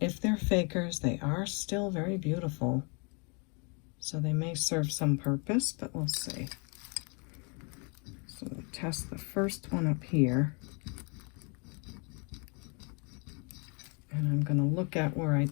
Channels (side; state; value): right; quieter; 34.5 dB